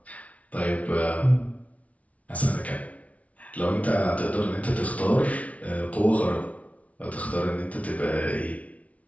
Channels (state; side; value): late; right; 0.067 ms